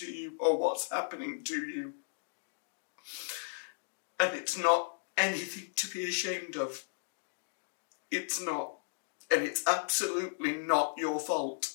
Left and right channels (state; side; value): silent; right; digital silence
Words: you or what's happening to you. And it's not anything to be ashamed of. It's not. And it's absolutely not your fault.